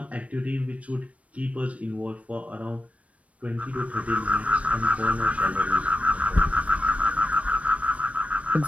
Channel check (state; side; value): late; left; 0.065 ms